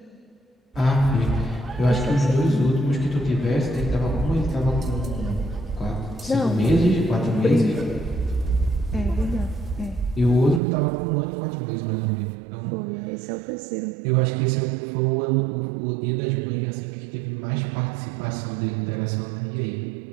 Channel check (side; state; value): left; drops out; at 10.6 s